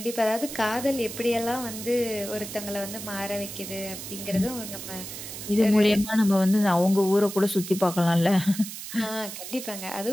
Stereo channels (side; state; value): right; noise; hiss, 10 dB below the sound